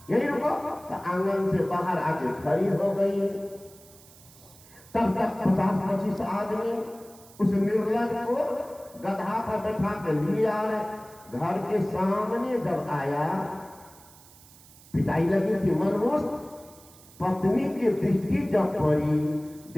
यही रुको। तो आंगन से बाहर आके खड़ी हो गई। तब तक 50-25 आदमी उस निर्लज को गधा पर बैठा के लिए आ रहे। घर के सामने जब आया, पिटाई लगी थी मनमोस्त। पत्नी की दृष्टि जब पड़ी,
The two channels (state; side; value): noise; right; hiss, 23 dB below the sound